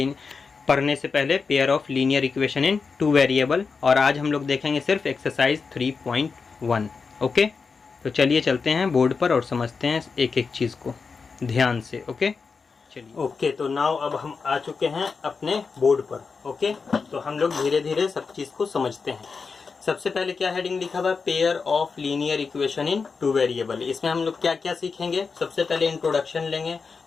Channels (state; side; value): quieter; right; 5.0 dB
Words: पढ़ने से पहले pair of linear equation in two variable. और आज हम लोग देखेंगे सिर्फ एक्सरसाइज 3.1. ओके, तो चलिए चलते हैं बोर्ड पर और समझते हैं एक एक चीज़ को ध्यान से. ओके, चलिए. ओके, तो नाउ अब हम आ चुके हैं अपने बोर्ड पर. ओके, तो हम लोग धीरे धीरे सब चीज़ को समझते हैं. सबसे पहले क्या हेडिंग लिखा हुआ है, pair of linear equation in two variable. इसमें हम लोग क्या क्या सीखेंगे. सबसे पहले इंट्रोडक्शन लेंगे